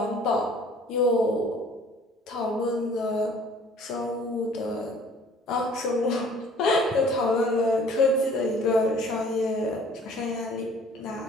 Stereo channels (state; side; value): normal; both; correlation 0.53